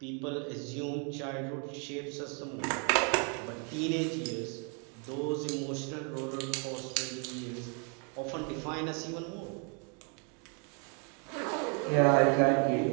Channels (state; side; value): quieter; left; 38.1 dB